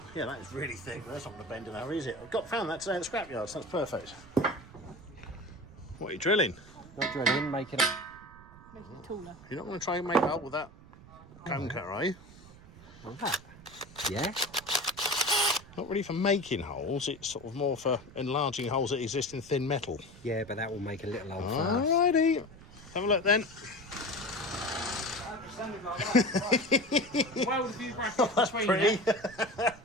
Yeah, that is really thick. That's not going to bend in a hurry, is it? I've found that today at the scrapyard, so that's perfect. What are you drilling? Not drilling, make it up. Make it taller. You're not going to try and make it up with that cone cutter, are you? Yeah. Not really for making holes, it's sort of more for enlarging holes that exist in thin metal. Yeah, but that will make a little hole first. Alrighty. Have a look then. Weld a few brackets That's between pretty. there.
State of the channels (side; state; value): right; noise; rumble, 20 dB below the sound